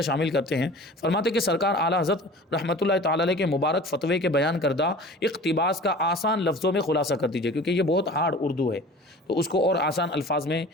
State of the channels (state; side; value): normal; both; correlation 0.41